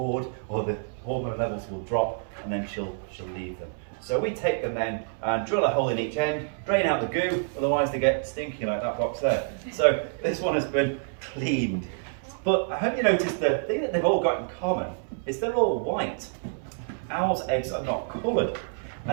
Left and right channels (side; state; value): left; silent; 60 dB below the other